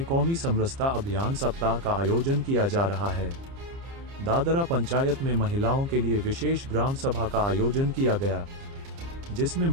कौमी समरसता अभियान सप्ताह का आयोजन किया जा रहा है। दादरा पंचायत में महिलाओं के लिए विशेष ग्राम सभा का आयोजन किया गया, जिसमें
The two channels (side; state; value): left; late; 30 ms